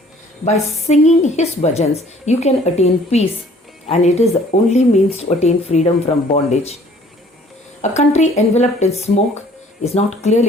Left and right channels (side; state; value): both; normal; correlation 0.56